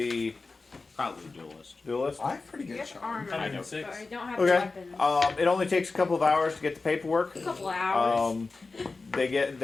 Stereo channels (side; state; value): right; quieter; 3.8 dB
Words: Probably duelist. duelist. I have pretty good Here's the charm. armor. I know. But 6. I don't have Okay. weapons. It only takes a couple of hours to get the paperwork. A couple hours.